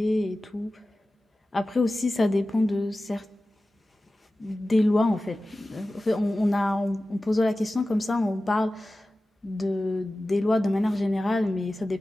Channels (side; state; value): both; normal; correlation 0.96